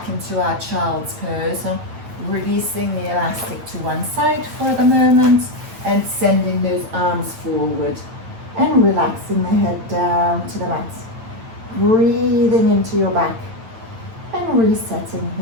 into our child's pose, releasing the elastic to one side for the moment, and sending those arms forward, and relaxing the head down to the mat. Breathing into your back, and resetting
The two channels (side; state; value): left; late; 8.8 ms